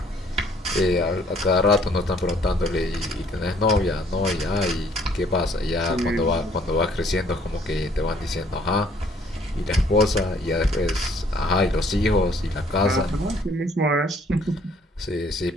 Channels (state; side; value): normal; both; correlation 0.62